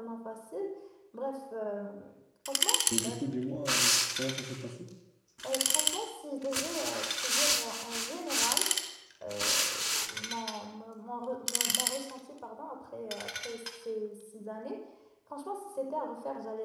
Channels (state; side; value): identical; both; correlation 1.00